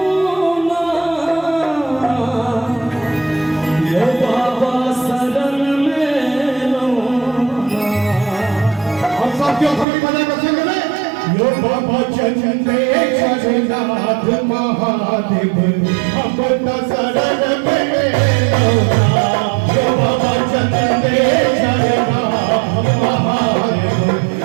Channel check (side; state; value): left; drops out; at 9.9 s